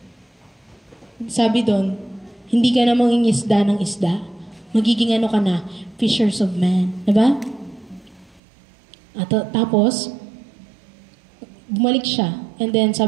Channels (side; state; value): left; drops out; at 8.4 s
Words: Sabi doon, hindi ka na mangingisda ng isda. Magiging ka na, fishers of men. Diba? At tapos, bumalik siya. And then